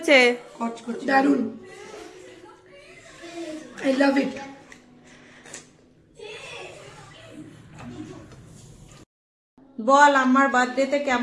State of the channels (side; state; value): both; identical; correlation 1.00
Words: দারুন, আই লাভ ইট। বল আমার বার্থডেতে